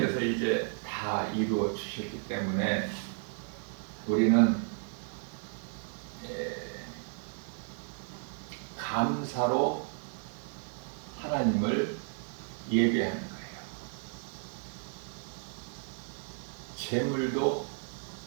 이제 다 이루어 주셨기 때문에 우리는 감사로 하나님을 예배하는 거예요. 제물도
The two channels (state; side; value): silent; left; 56 dB below the other